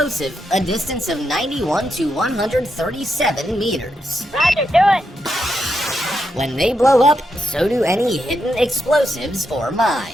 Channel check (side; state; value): both; normal; correlation 0.83